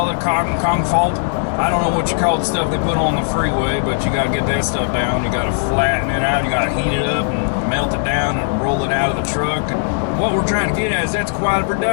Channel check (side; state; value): right; silent; digital silence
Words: it, concrete. I don't know what you call the stuff they put on the freeway, but you got to get that stuff down. You got to flatten it out. You got to heat it up and melt it down and roll it out of the truck. And what we're trying to get at is that's quite a